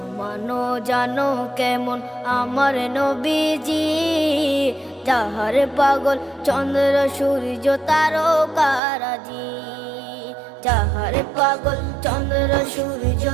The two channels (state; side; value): drops out; left; at 8.8 s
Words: জানো জানো কেমন আমার নবীজি, যাহার পাগল চন্দ্র সূর্য তারকারাজি, যাহার পাগল চন্দ্র সূর্য